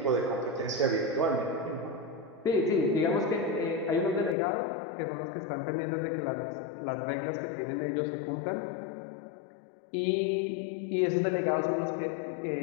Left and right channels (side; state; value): right; drops out; at 4.4 s